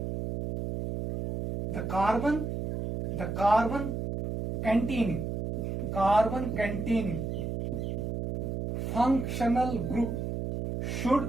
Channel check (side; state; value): right; noise; hum, 3 dB below the sound